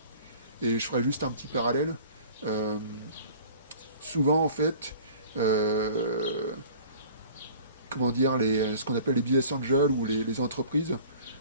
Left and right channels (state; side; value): inverted; both; correlation -0.47